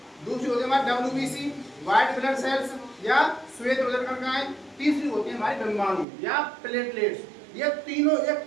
दूसरी होती है हमारी WBC, व्हाइट ब्लड सेल्स या श्वेत उदर कण का है। तीसरी होती है हमारी डिम्बाणु या प्लेटलेट्स। ये तीनों एक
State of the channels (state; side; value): drops out; left; at 6.1 s